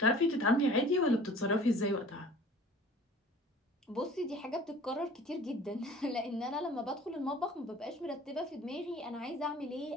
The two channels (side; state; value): both; normal; correlation 0.47